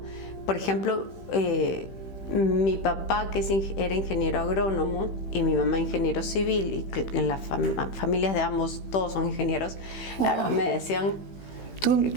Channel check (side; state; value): right; late; 15 ms